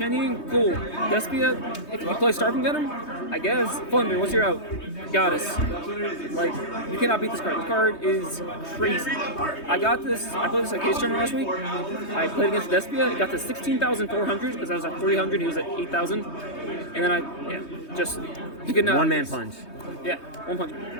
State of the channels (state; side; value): late; right; 3.2 ms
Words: Ying, cool. Despia, if you play Starving Venom, I guess. Flunder, what's your out? Goddess. Like, you cannot beat this card. This card is crazy. I played this at Case Tournament last week. I played against Despia, it got to 16,400 because I was at 300, he was at 8,000. And then he could not. One man punch. Yeah, 1 punch.